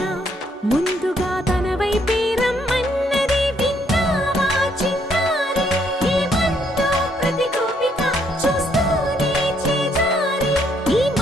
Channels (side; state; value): both; normal; correlation 0.70